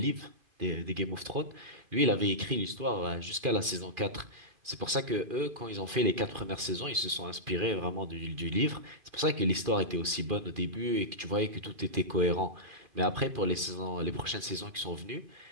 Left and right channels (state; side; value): late; left; 2.4 ms